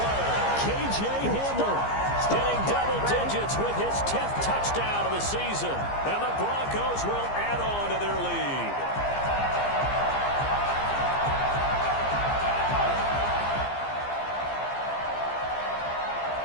K.J. Hamler hitting double digits with his 10th touchdown of the season. And the Broncos will add on to their lead.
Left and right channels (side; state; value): right; late; 15 ms